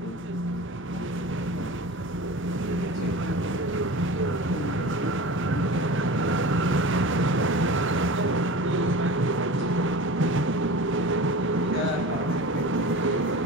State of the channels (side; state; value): both; normal; correlation 0.34